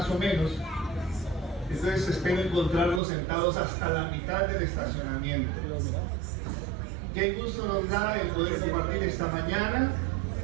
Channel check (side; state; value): left; drops out; at 3.0 s